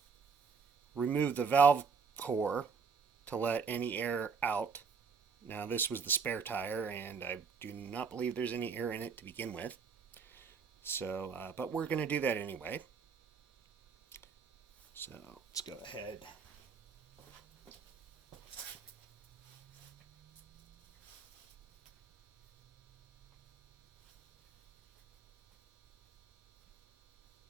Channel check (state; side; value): quieter; left; 5.6 dB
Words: remove the valve core to let any air out. Now, this was the spare tire, and I do not believe there's any air in it to begin with. So, but we're going to do that anyway. So, let's go ahead.